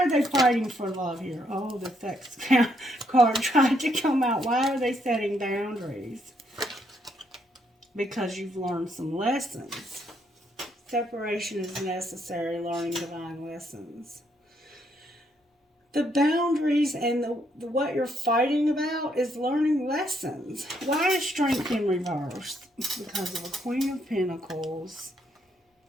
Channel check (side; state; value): both; normal; correlation 0.73